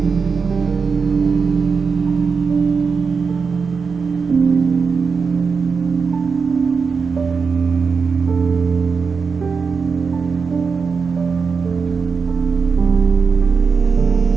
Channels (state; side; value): quieter; left; 5.3 dB